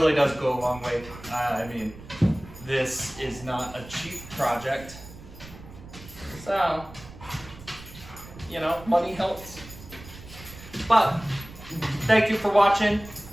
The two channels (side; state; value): right; noise; rumble, 17 dB below the sound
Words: does go a long way. I mean, this is not a cheap project. So, you know, money helps. But, thank you for watching.